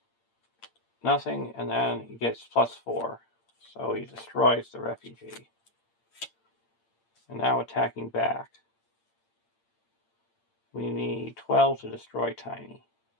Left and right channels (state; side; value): late; right; 8.7 ms